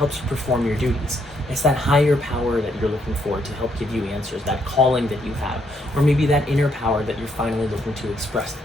you perform your duties. It's that higher power that you're looking for to help give you answers, that calling that you have, or maybe that inner power that you're finally looking to express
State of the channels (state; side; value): normal; both; correlation 0.73